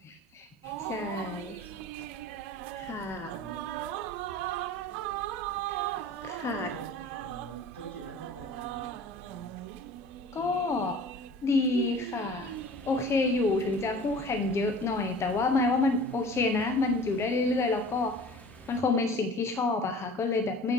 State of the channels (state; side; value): normal; both; correlation 0.43